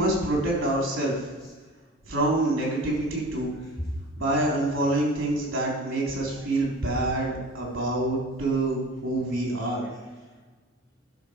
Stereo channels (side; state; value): both; normal; correlation 0.39